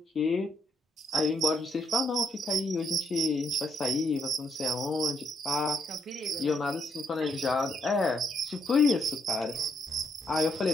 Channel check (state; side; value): normal; both; correlation 0.74